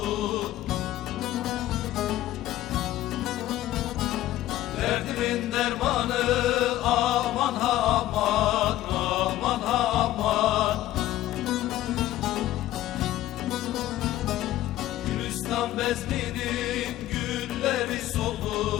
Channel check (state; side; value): quieter; right; 14.5 dB